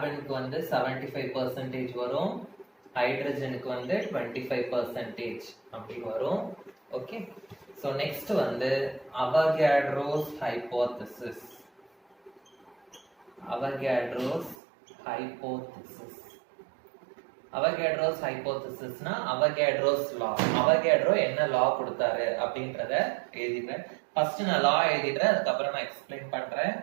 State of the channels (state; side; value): drops out; left; at 14.6 s